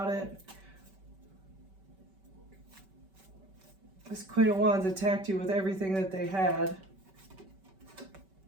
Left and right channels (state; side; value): late; left; 5.2 ms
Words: it. This Queen of Wands attacked you with everything that they had